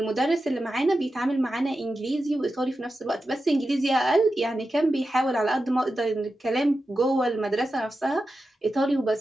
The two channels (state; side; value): normal; both; correlation 0.91